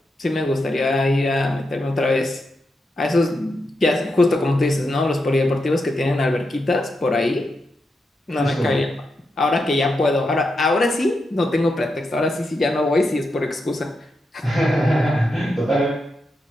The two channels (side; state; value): both; normal; correlation 0.85